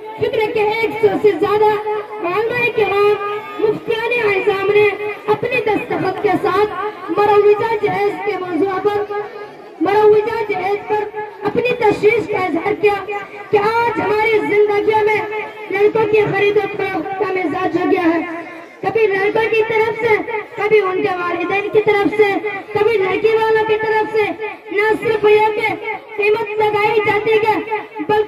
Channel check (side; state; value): both; identical; correlation 1.00